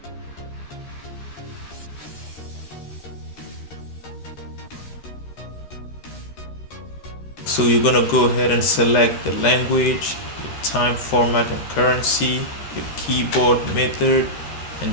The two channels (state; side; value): late; right; 13 ms